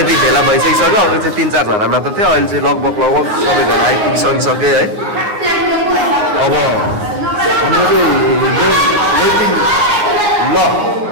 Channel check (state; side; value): late; left; 9.6 ms